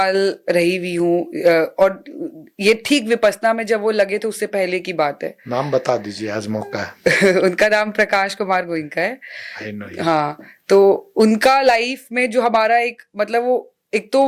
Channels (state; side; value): identical; both; correlation 1.00